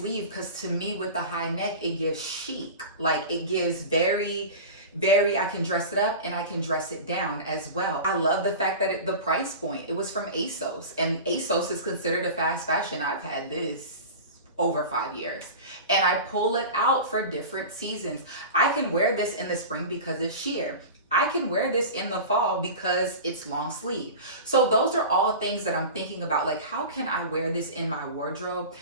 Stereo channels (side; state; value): both; inverted; correlation -0.31